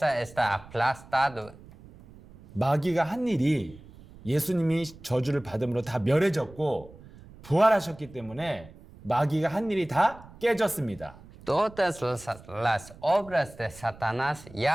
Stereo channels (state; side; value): noise; right; rumble, 20 dB below the sound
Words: está aplastada. 마귀가 한 일이 예수님이 저주를 받음으로 다 멸해졌고 부활하셨기 때문에 마귀가 한 일이 다 깨졌습니다. Todas las obras de Satanás